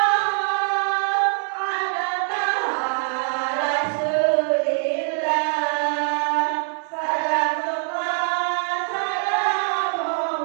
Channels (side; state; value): left; silent; 62 dB below the other